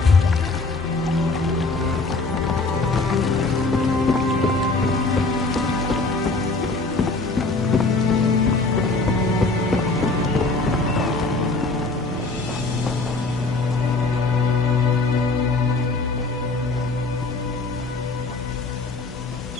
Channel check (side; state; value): right; quieter; 3.5 dB